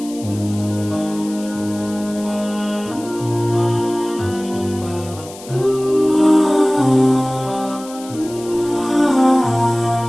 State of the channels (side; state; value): left; noise; hiss, 18 dB below the sound